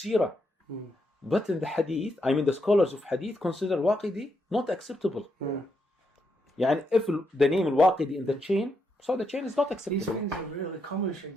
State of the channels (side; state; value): both; normal; correlation 0.80